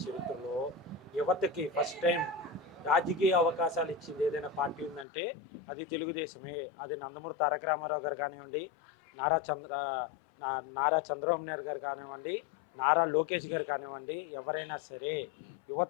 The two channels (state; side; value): drops out; right; at 5.1 s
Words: చరిత్రలో యువతకి ఫస్ట్ టైం రాజకీయ అవకాశాలు ఇచ్చింది ఏదైనా పార్టీ ఉందంటే అది తెలుగుదేశమే. అది నందమూరి తారక రామారావు గారు కానివ్వండి, నారా చంద్ర నారా చంద్రబాబు నాయుడు గారు కానివ్వండి, నారా లోకేష్ గారు కానివ్వండి, ఎవరైనా సరే